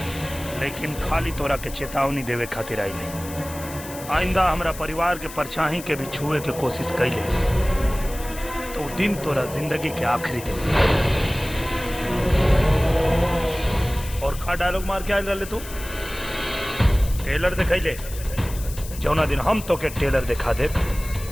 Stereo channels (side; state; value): left; noise; hiss, 14 dB below the sound